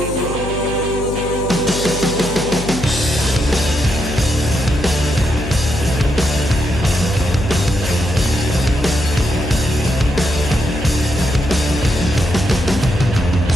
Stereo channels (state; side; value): noise; left; hum, 7 dB below the sound